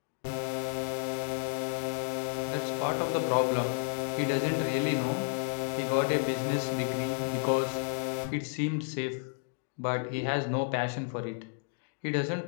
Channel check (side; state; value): right; silent; digital silence